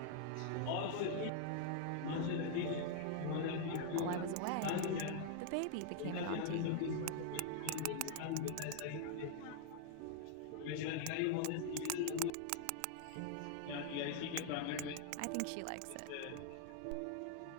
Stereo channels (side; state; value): both; different; correlation -0.01